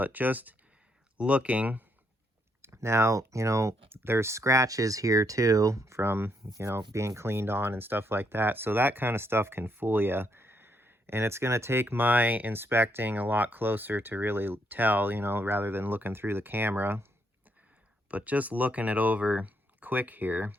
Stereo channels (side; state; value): both; normal; correlation 0.75